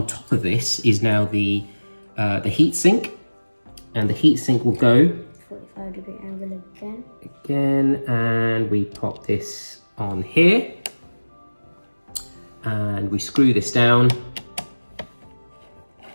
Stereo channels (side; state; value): both; inverted; correlation -1.00